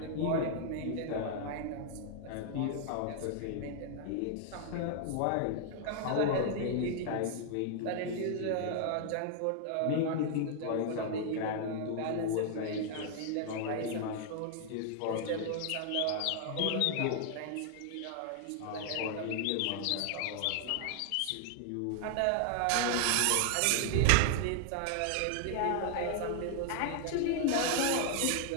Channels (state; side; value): different; both; correlation 0.00